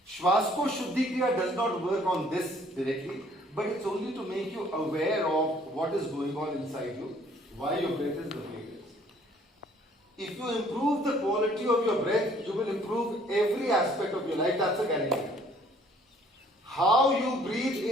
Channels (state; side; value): normal; both; correlation 0.59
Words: Swaskosh Shuddhi Kriya does not work on this directly, but it's only to make you aware of what is going on inside you, why your breath is the way it is. If you improve the quality of your breath, you will improve every aspect of your life. That's a guarantee. How you breathe